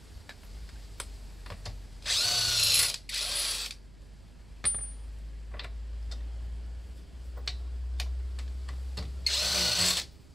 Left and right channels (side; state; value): right; noise; rumble, 20 dB below the sound